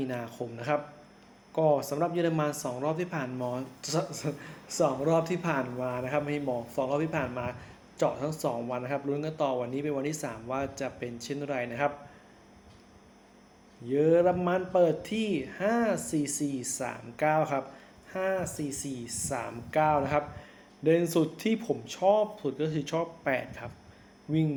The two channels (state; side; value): identical; both; correlation 1.00